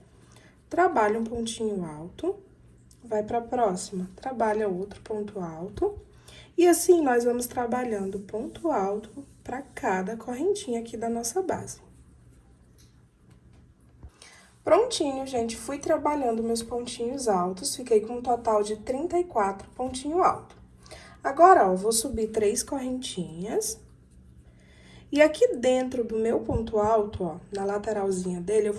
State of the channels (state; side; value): identical; both; correlation 1.00